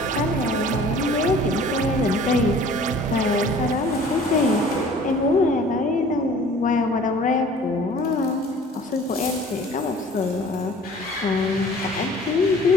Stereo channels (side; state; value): both; normal; correlation 0.49